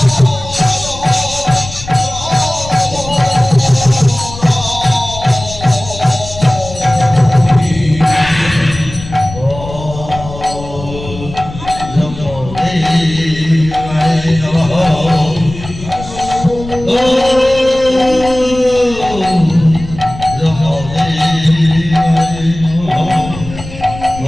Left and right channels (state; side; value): noise; left; rumble, 12 dB below the sound